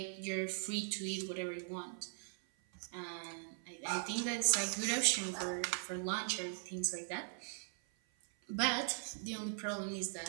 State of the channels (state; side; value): silent; left; 51 dB below the other